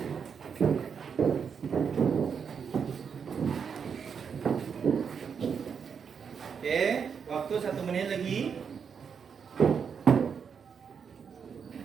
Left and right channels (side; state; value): left; quieter; 6.6 dB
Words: Oke, waktu 1 menit lagi.